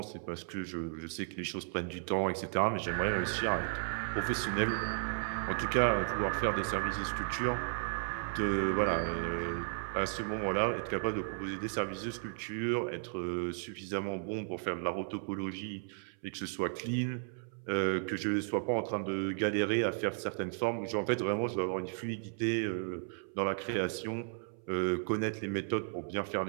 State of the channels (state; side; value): silent; left; 55 dB below the other